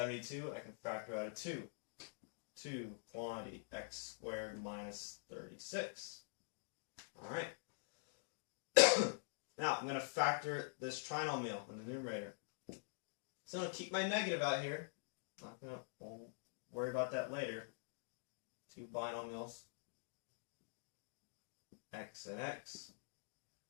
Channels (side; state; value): right; silent; digital silence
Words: I can factor out a 2. 2 quantity x squared minus 36. Alright. Now I'm going to factor this trinomial in the numerator. So I'm going to keep my negative out here. We'll worry about that later. 2 binomials, x and x.